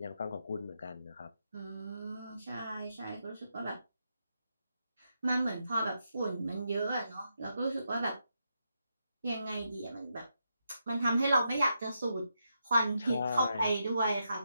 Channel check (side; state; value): both; inverted; correlation -0.83